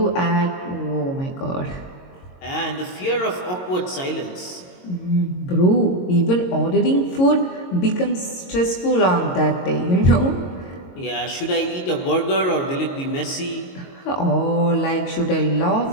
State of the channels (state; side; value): late; right; 22 ms